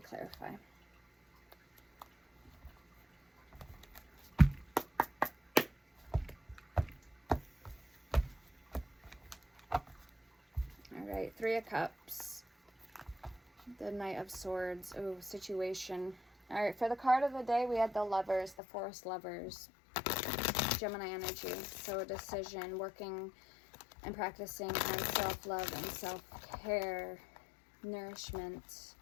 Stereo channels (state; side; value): drops out; right; at 18.6 s